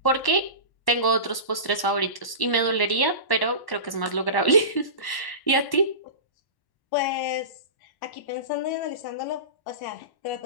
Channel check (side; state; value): right; late; 1.1 ms